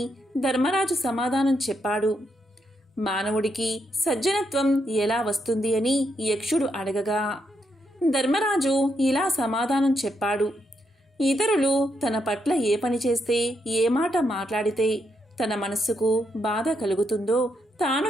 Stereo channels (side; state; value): both; normal; correlation 0.80